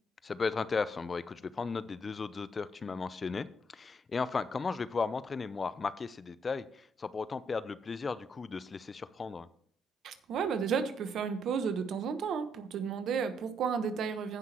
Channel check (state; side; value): normal; both; correlation 0.73